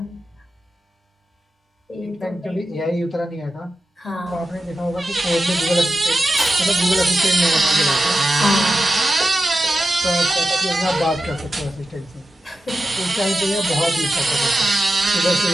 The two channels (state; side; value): normal; both; correlation 0.92